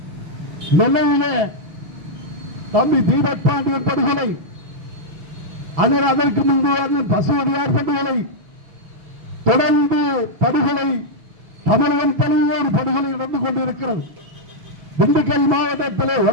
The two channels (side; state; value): left; late; 6.0 ms